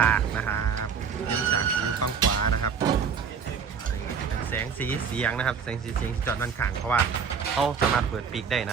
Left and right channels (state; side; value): quieter; left; 6.5 dB